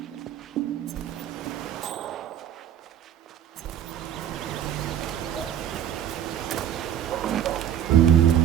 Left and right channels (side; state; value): left; quieter; 10.2 dB